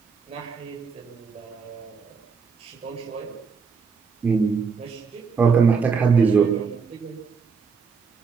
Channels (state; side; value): quieter; left; 5.5 dB